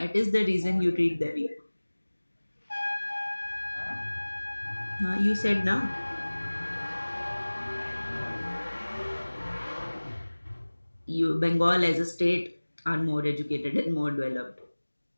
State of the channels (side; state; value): both; inverted; correlation -1.00